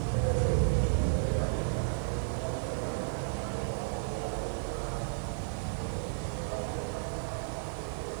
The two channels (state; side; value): silent; left; 56 dB below the other